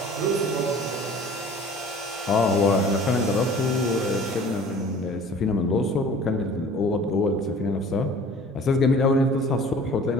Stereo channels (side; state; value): both; normal; correlation 0.47